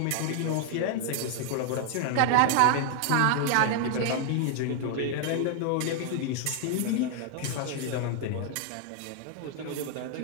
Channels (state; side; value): different; both; correlation 0.00